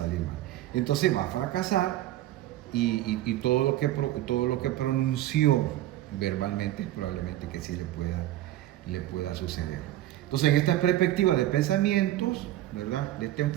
mal. Entonces va a fracasar y todo lo que pronunció verbalmente probablemente que sí le pueda suceder. Entonces, en esta perspectiva de pensamientos, ¿verdad?, de este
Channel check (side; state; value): left; quieter; 14.2 dB